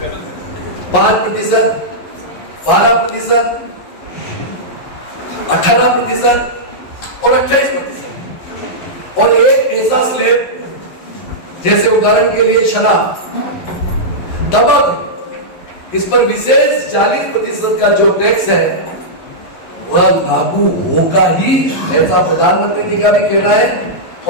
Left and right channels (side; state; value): right; late; 11 ms